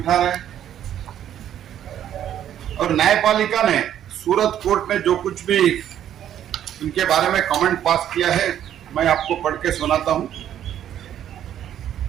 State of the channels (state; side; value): quieter; left; 10.7 dB